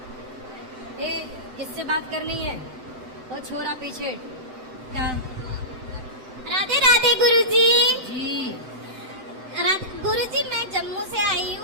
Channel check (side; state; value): left; late; 7.8 ms